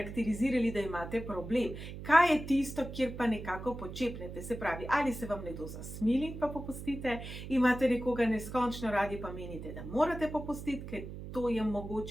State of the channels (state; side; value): noise; right; hum, 10 dB below the sound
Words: da imate problem. Kaj je tisto, kjer pa nekako počepnete? Se pravi, ali se vam nekdo zasmili, pa popustite, imate nekoga neskončno radi, pa menite, da morate popustiti, ker to je